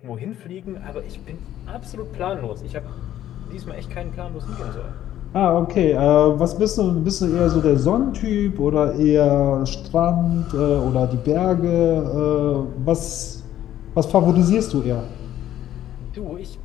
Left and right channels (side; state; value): right; quieter; 12.1 dB